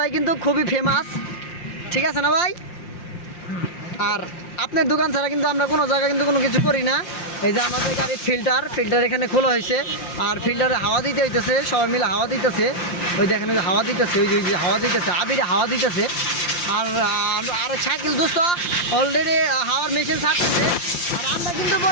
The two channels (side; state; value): right; late; 5.7 ms